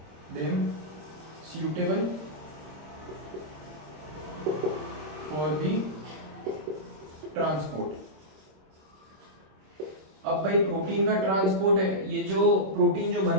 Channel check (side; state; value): left; late; 26 ms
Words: them suitable for the transport। अब भाई प्रोटीन का ट्रांसपोर्ट है, ये जो प्रोटीन जो